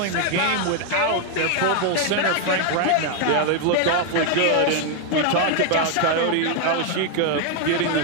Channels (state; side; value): different; both; correlation 0.00